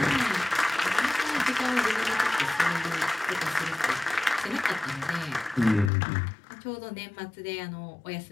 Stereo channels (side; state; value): right; drops out; at 5.9 s